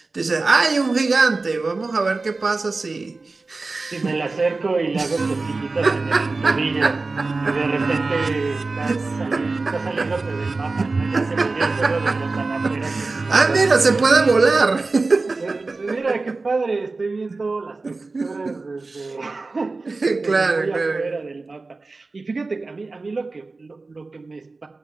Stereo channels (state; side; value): quieter; left; 3.6 dB